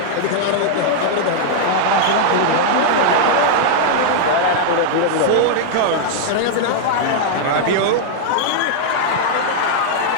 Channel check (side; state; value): both; different; correlation -0.01